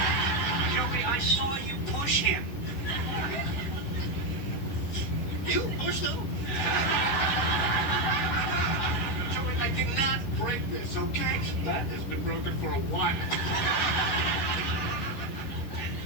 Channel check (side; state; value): right; late; 11 ms